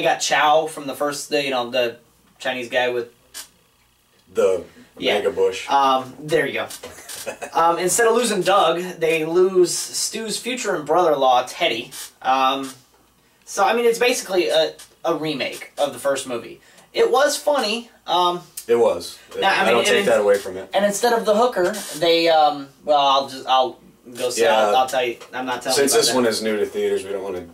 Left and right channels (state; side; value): identical; both; correlation 1.00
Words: got Chow from the first, the Chinese guy with the mega bush. There you go. Instead of losing Doug, they lose Stu's future and brother-in-law Teddy. So I mean, it's basically a remake of the first movie. It was funny. It was. I don't take that away from it. And instead of the hooker, they I'll go see. Yeah, I'll tell you. I'm not telling you. Since this one is new to theaters, we don't want to